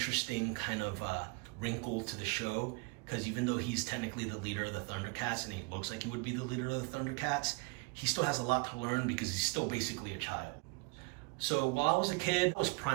kind of wrinkle to the show. Because even though he's technically the leader of the Thundercats, and he looks like he would be the leader of the Thundercats, he still has a lot to learn because he's still basically a child. So while I was a kid, I was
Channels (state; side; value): quieter; left; 27.9 dB